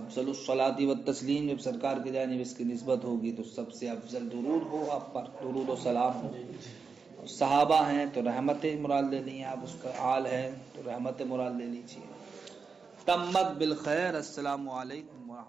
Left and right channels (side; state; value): left; quieter; 5.1 dB